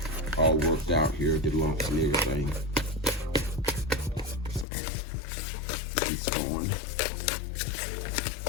all worked out here, the lumps and everything. It's going.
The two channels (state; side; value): drops out; right; at 4.7 s